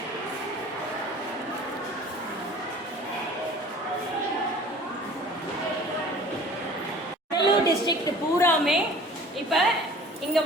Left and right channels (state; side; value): normal; both; correlation 0.46